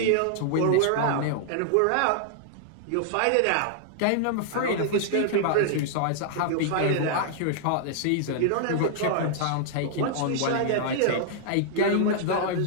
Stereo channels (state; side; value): different; both; correlation -0.01